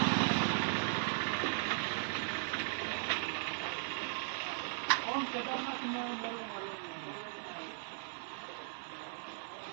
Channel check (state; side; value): silent; left; digital silence